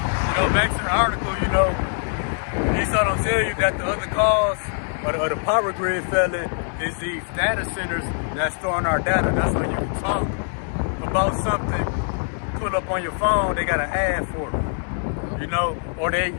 Back to the article, Esau don't tell you that the other cause of the power grid failing is these data centers that storing our data. That's when you can talk about something, pull up on your phone, they got an ad for it, or they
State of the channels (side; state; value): right; silent; 63 dB below the other